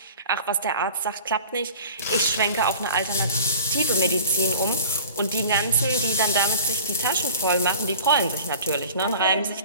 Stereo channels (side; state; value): both; inverted; correlation -0.42